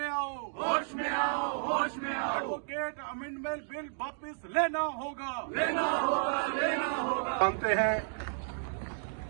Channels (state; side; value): silent; left; digital silence